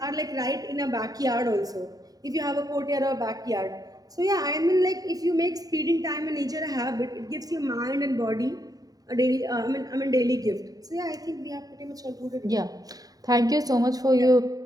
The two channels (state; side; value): late; left; 0.18 ms